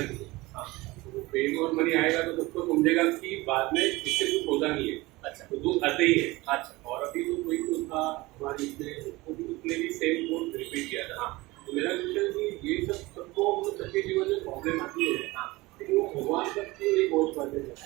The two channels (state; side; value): quieter; left; 21.2 dB